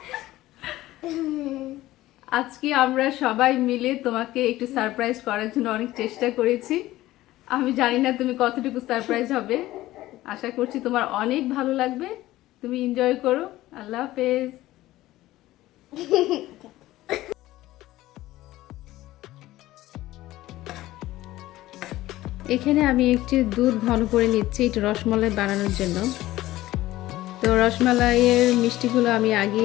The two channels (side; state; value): right; quieter; 16.2 dB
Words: আজকে আমরা সবাই মিলে তোমাকে একটু সারপ্রাইজ করার জন্য অনেক চেষ্টা করেছি। আমি জানি না তুমি কতটুকু সারপ্রাইজ হবে। আশা করছি তোমার অনেক ভালো লাগবে। তুমি এনজয় করো। আল্লাহ হাফেজ। এখানে আমি একটু দুধ ঘন করে নিচ্ছি একটু রসমালাই বানানোর জন্য। তো রসমালাইয়ের মিষ্টিগুলো আমি